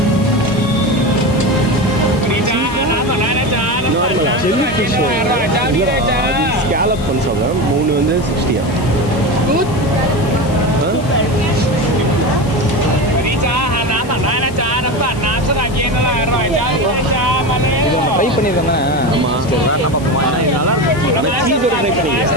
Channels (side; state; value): left; noise; hiss, 19 dB below the sound